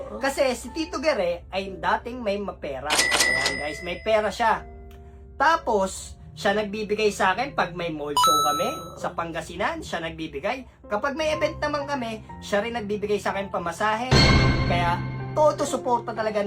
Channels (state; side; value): identical; both; correlation 1.00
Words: Kasi si Tito Gere ay dating may mapera. Ayan guys, may pera siya. Tapos, siya nagbibigay sa akin pag may mall show kami sa Pangasinan, siya nagbibigay. Kapag may event naman kami, siya rin nagbibigay sa akin pamasahe. Kaya, todo suporta talaga